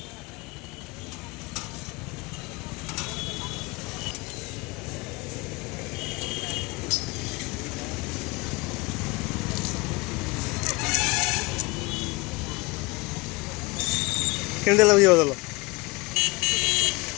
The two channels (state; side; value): quieter; right; 24.8 dB